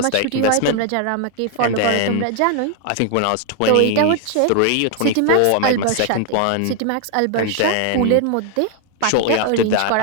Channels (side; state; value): both; different; correlation 0.00